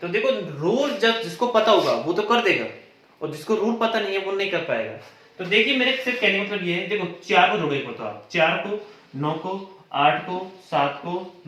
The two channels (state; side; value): identical; both; correlation 1.00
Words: देखो रूल जब जिसको पता होगा वो तो कर देगा, और जिसको रूल पता नहीं है वो नहीं कर पाएगा। तो देखिए मेरे सिर्फ कहने का मतलब ये है, देखो 4 को जोड़ो, एक होता है 4 को 9 को 8 को 7 को